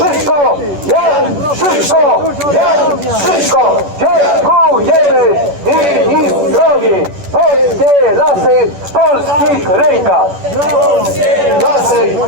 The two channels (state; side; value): late; left; 10 ms